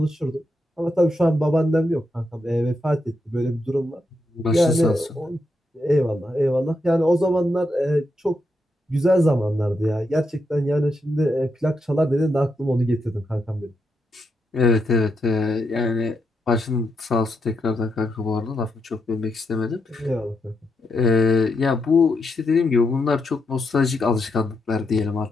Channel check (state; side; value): normal; both; correlation 0.82